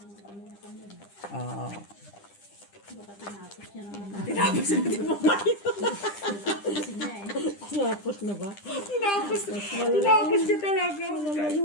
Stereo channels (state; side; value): late; right; 10 ms